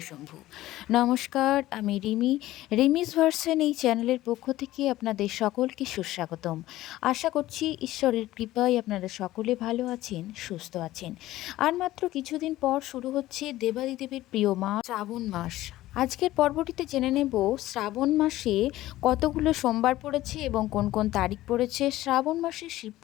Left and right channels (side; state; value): right; quieter; 15.8 dB